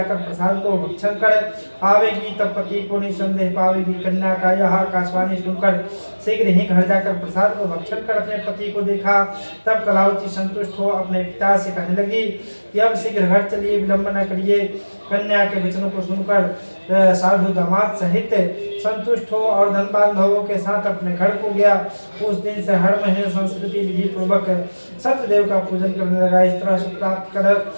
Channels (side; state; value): both; inverted; correlation -1.00